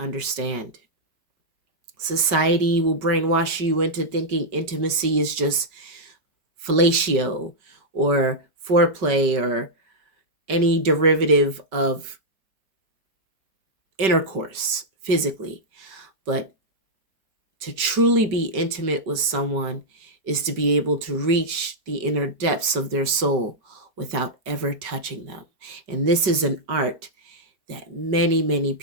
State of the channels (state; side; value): late; left; 5.2 ms